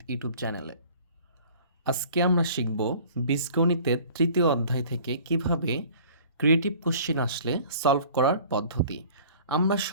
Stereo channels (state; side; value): inverted; both; correlation -0.49